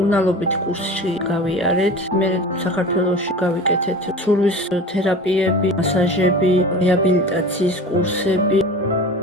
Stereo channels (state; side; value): normal; both; correlation 0.36